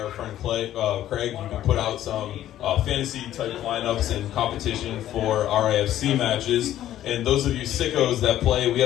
our friend Craig. You can put out some fantasy-type lineups and competition for RAFC matches. And those of you sickos that play, we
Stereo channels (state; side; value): quieter; right; 12.6 dB